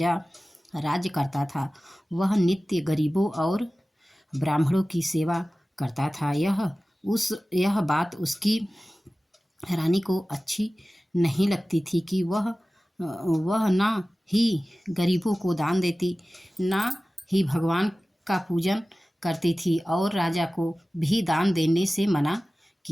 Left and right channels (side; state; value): both; normal; correlation 0.97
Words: राज्य करता था। वह नित्य गरीबों और ब्राह्मणों की सेवा करता था। यह बात उसकी रानी को अच्छी नहीं लगती थी कि वह ना ही गरीबों को दान देती, ना ही भगवान का पूजन करती थी और राजा को भी दान देने से मना